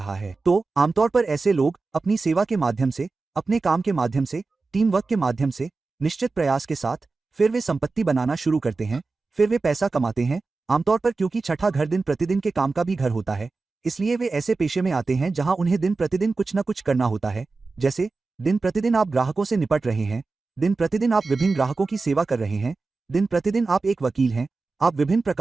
है। तो आमतौर पर ऐसे लोग अपनी सेवा के माध्यम से, अपने काम के माध्यम से, टीम वर्क के माध्यम से, निश्चित प्रयास के साथ फिर वे संपत्ति बनाना शुरू करते हैं, फिर वे पैसा कमाते हैं। आमतौर पर क्योंकि छठा घर दिन प्रतिदिन के काम का भी घर होता है, इसलिए वे ऐसे पेशे में आते हैं जहां उन्हें दिन प्रतिदिन कुछ न कुछ करना होता है। जैसे दिन प्रतिदिन आप ग्राहकों से निपट रहे हैं, दिन प्रतिदिन आप विभिन्न ग्राहकों की सेवा कर रहे हैं, दिन प्रतिदिन आप एक वकील हैं, आप विभिन्न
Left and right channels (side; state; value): left; quieter; 3.9 dB